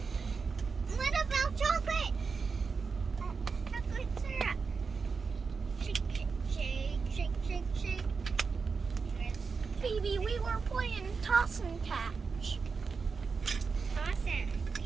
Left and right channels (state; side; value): quieter; left; 5.0 dB